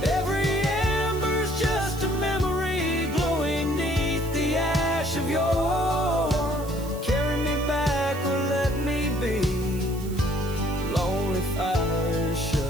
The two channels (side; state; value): right; noise; hiss, 17 dB below the sound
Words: Every ember's just a memory glowing neath the ash of yore. Carry me back or let me be. Lonely fire,